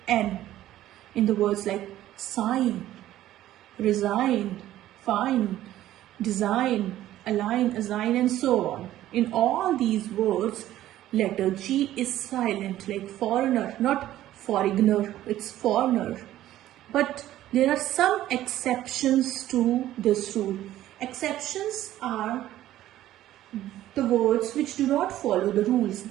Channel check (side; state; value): left; quieter; 13.6 dB